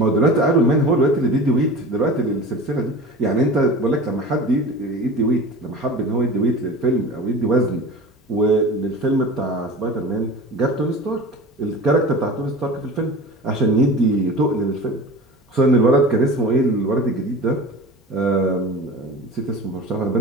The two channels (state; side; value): normal; both; correlation 0.35